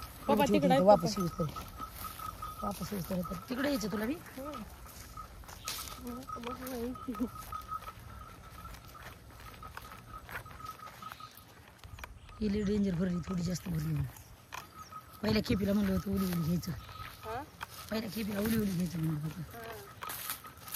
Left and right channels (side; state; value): both; identical; correlation 1.00